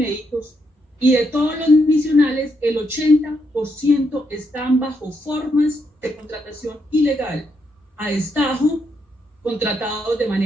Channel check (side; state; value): both; normal; correlation 0.79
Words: y de todos los misionales, el 80% están bajo formas de contratación ilegal, a destajo, contratados de